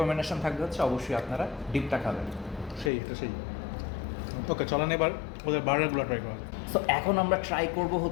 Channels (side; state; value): right; drops out; at 2.9 s